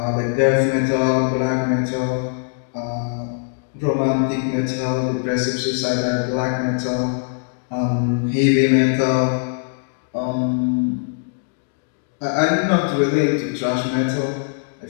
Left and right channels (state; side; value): silent; right; digital silence